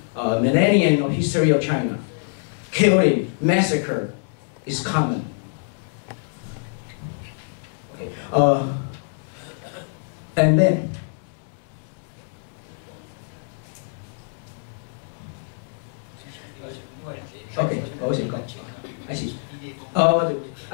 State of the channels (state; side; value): silent; right; 62 dB below the other